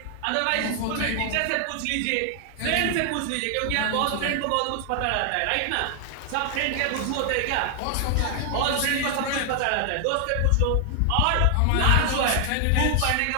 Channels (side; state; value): both; different; correlation 0.00